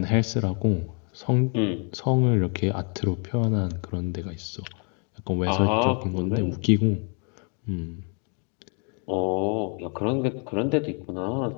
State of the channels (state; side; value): quieter; right; 39.3 dB